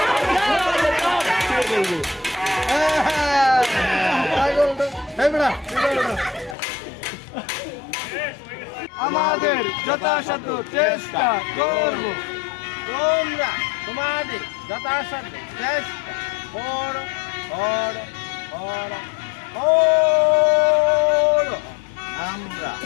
আমাদের যথাসাধ্য চেষ্টা করব, তোমরা তোমাদের যথাসাধ্য চেষ্টা করো করো করো করো।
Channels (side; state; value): right; drops out; at 6.6 s